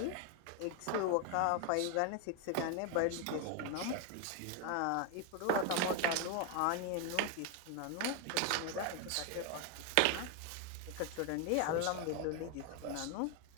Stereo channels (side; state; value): both; different; correlation 0.01